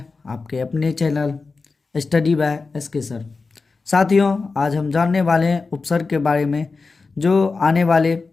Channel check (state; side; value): quieter; right; 4.2 dB